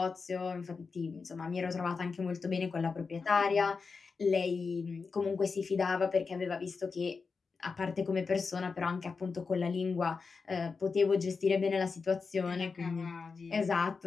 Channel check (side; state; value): right; quieter; 4.8 dB